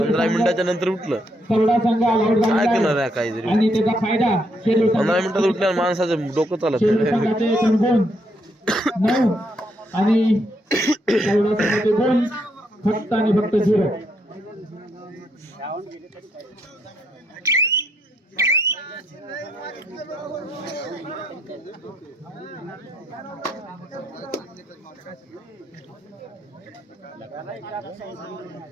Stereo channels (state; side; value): normal; both; correlation 0.75